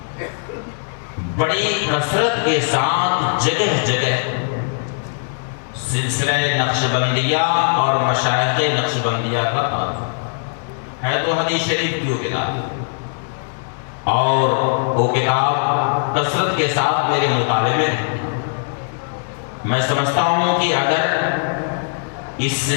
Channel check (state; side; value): silent; right; digital silence